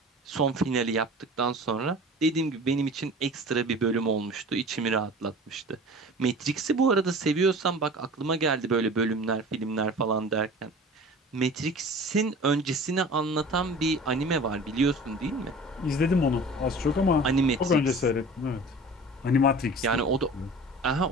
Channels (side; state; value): both; normal; correlation 0.40